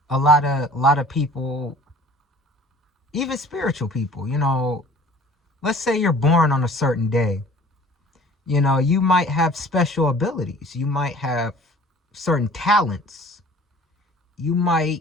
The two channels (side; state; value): both; normal; correlation 0.49